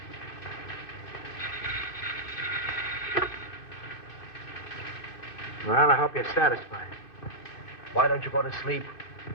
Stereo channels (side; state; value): right; late; 2.6 ms